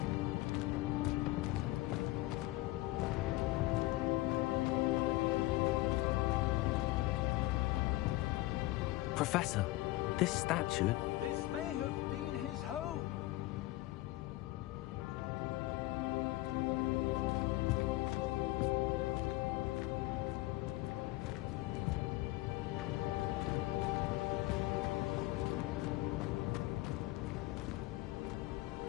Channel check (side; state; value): right; quieter; 18.6 dB